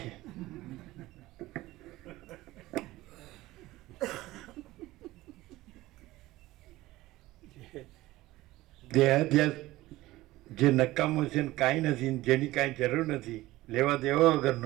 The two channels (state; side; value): quieter; left; 17.6 dB